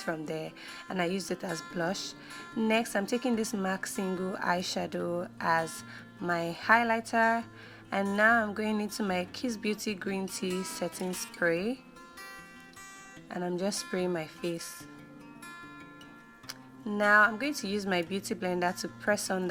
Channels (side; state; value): both; identical; correlation 1.00